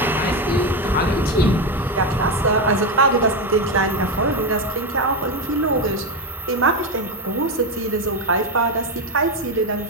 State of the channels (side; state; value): both; normal; correlation 0.11